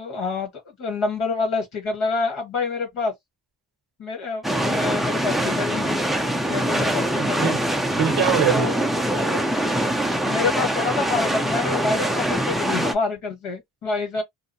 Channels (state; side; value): normal; both; correlation 0.62